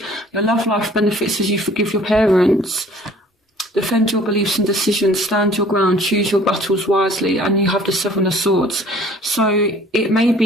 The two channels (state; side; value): normal; both; correlation 0.53